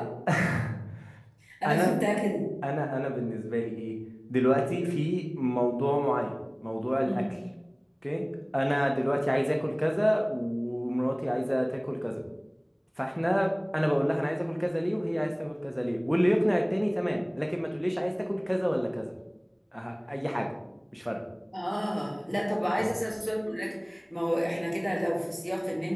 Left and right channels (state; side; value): identical; both; correlation 1.00